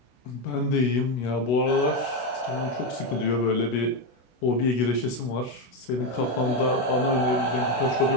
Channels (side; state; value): right; late; 24 ms